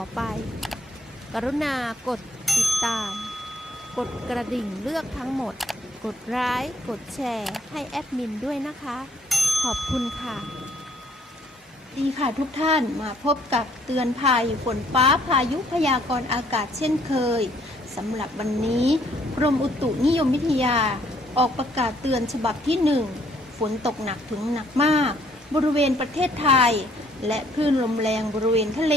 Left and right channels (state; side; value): normal; both; correlation 0.65